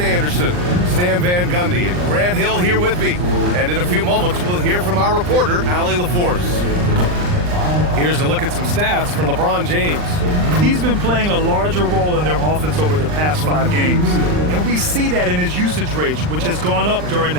Anderson, Stan Van Gundy, and Grant Hill here with me. And in a few moments, we'll hear from our reporter, Allie LaForce. Here's a look at some stats for LeBron James. He's been playing a larger role in their offense over the past 5 games. And we see that in his usage rate, which has gone up during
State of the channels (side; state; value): left; late; 39 ms